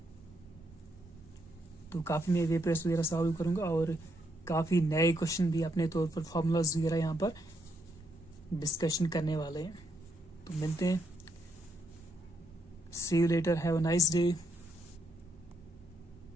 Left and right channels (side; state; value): both; normal; correlation 0.77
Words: तो काफ़ी मैं वे प्रेस वगैरह सॉल्व करूँगा और काफ़ी नए क्वेश्चन भी अपने तौर पर फॉर्मूलाज वगैरह यहाँ पर डिस्कशन करने वाले हैं। तो मिलते हैं, see you later, have a nice day.